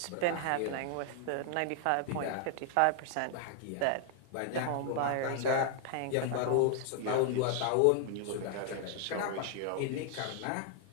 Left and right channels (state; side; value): different; both; correlation 0.00